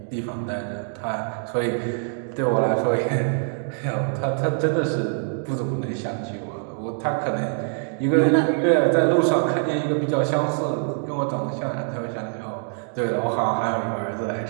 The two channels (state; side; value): silent; left; 56 dB below the other